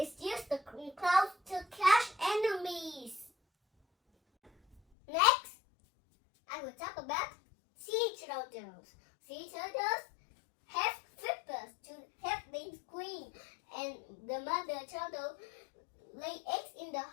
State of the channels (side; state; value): right; drops out; at 4.8 s